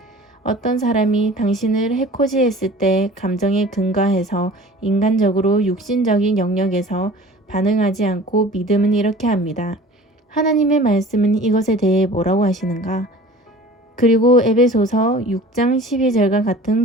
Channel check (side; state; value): both; normal; correlation 0.43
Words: 어떤 사람이 당신을 해코지했을 때 감정에 근거해서 인간적으로 육신적인 영역에서 반응하지 않고 믿음은 이렇게 합니다. 하나님의 말씀은 이것에 대해 뭐라고 하시는가? 그리고 에베소서 6장 12절과